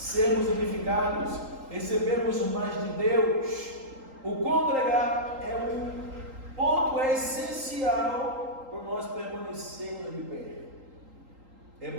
edificados, recebermos mais de Deus. O congregar é um ponto essencial para nós permanecermos de pé. É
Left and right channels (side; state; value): left; late; 3.8 ms